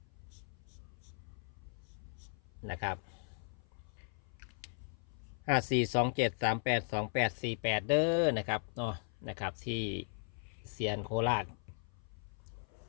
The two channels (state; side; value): silent; right; 53 dB below the other